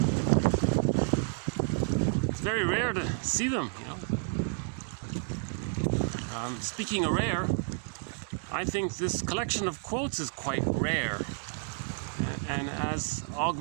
it's very rare to see them, you know. Speaking of rare, I think this collection of quotes is quite rare. And as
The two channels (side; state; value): left; silent; 57 dB below the other